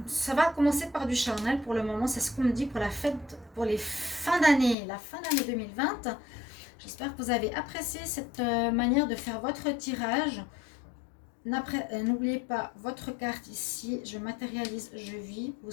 ça va commencer par du charnel pour le moment. C'est ce qu'on me dit pour la fête, pour les fins d'année, la fin d'année 2020. J'espère que vous avez apprécié cette manière de faire votre tirage. N'oubliez pas votre carte ici. Je matérialise, je vis. Vous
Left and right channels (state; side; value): drops out; right; at 4.8 s